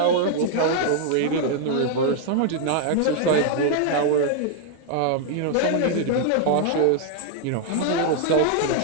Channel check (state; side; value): different; both; correlation 0.00